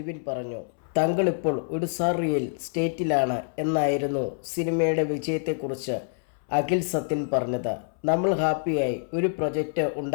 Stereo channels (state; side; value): silent; right; 61 dB below the other